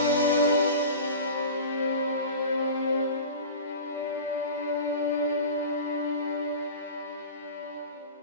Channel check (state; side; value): inverted; both; correlation -0.35